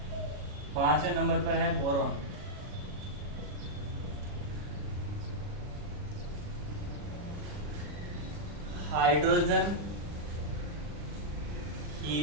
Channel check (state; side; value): late; left; 40 ms